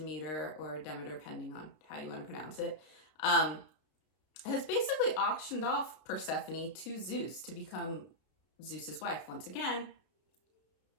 or Demeter, depending on how you want to pronounce it, has basically auctioned off Persephone to Zeus to become Zeus's wife. Once again,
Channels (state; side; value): late; right; 32 ms